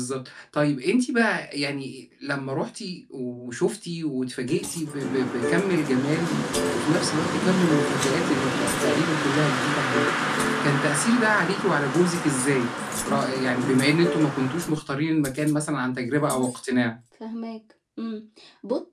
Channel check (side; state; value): both; identical; correlation 1.00